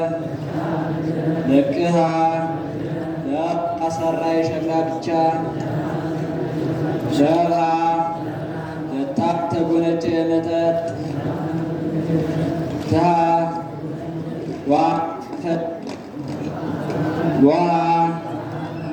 ለቅሃ ለአሰራ የሸክላ ብቻ ሸርሃ ለታብ ተጎነጨ የመጠጥ ትሃ ዋ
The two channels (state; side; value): identical; both; correlation 1.00